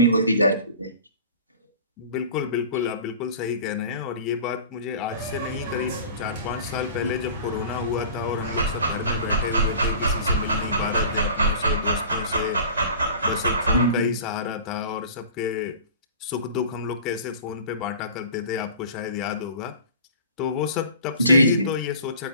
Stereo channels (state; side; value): inverted; both; correlation -0.42